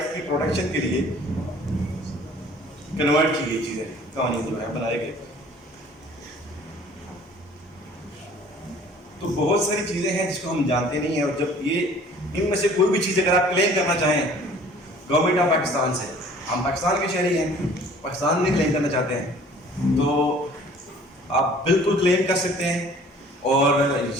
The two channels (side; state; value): both; normal; correlation 0.51